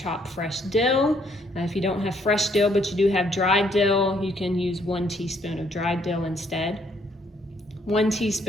fresh dill. If you don't have fresh dill but you do have dried dill, you can use 1 teaspoon of dried dill instead. 1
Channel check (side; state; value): both; normal; correlation 0.68